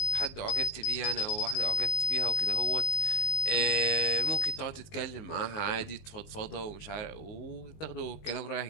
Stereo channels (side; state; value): right; late; 19 ms